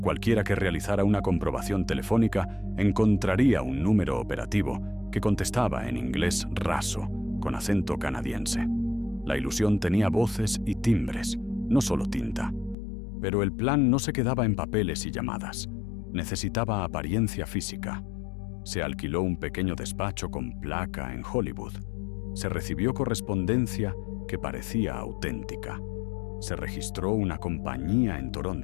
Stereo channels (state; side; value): drops out; right; at 12.8 s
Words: Cualquiera que realizara una comprobación telefónica encontraría un número operativo que contestaba en inglés raso, con acento canadiense. La ilusión tenía voces y timbres, no solo tinta. Pero el plan no se quedaba en papeles y llamadas. Necesitaba apariencia física. Se alquiló un pequeño despacho con placa en Hollywood. Se recibió correspondencia que parecía auténtica. Se registró una compañía en